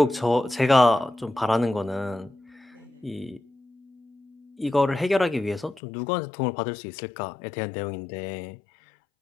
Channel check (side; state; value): right; drops out; at 5.8 s